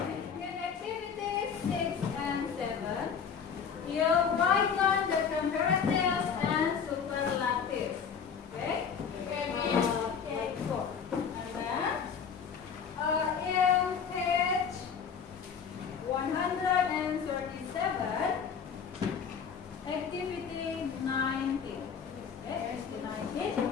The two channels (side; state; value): right; quieter; 6.8 dB